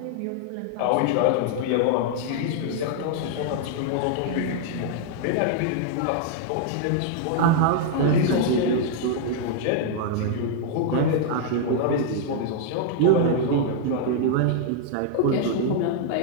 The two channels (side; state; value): both; different; correlation -0.01